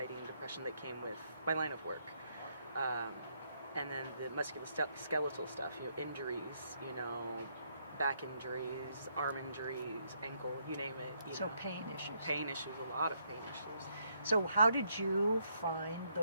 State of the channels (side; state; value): both; inverted; correlation -0.74